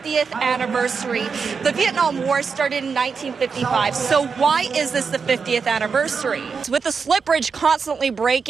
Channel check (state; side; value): quieter; left; 5.4 dB